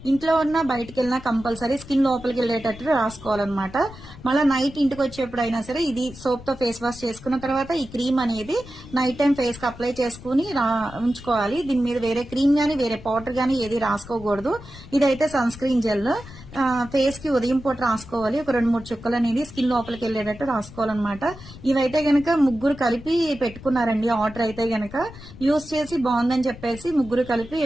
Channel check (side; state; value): left; noise; rumble, 17 dB below the sound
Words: ఇంట్లో ఉన్న బయటకు వెళ్ళినా కంపల్సరీ స్కిన్ లోపలికి వెళ్ళేటట్టు రాసుకోవాలన్నమాట. మళ్ళీ నైట్ ఇంటికి వచ్చేప్పుడైనా సరే ఇది సోప్ తో ఫేస్ వాష్ చేసుకున్న తర్వాత ఈ క్రీమ్ అనేది నైట్ టైం ఫేస్ కి అప్లై చేసుకుని ఉంచుకోవాలి. దీని మీద వేరే క్రీమ్ గానీ వేరే పౌడర్ గానీ ఏది రాసుకోకూడదు. ఇదైతే సన్ స్క్రీన్ జెల్ ఫేస్ కి ఉదయం పూట రాసుకోవాలి. ఒక 2-3 చుక్కలు అనేది స్కిన్ లోపలికి వెళ్ళేటట్టు రాసుకోవాలన్నమాట. ఇవైతే గనక ముగ్గురు కలిపి పెట్టుకున్నారండి ఆర్డర్. అయితే గనక యూజ్ చేసి బాగుందని చెప్పేసి ముగ్గురు కలిపి